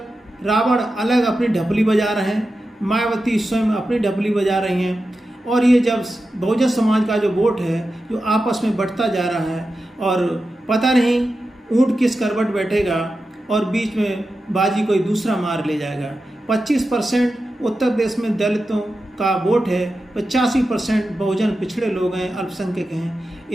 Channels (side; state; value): both; normal; correlation 0.91